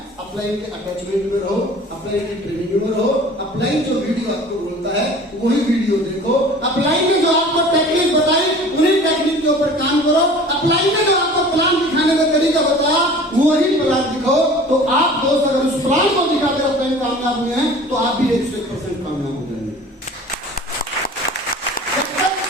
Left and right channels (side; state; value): both; normal; correlation 0.44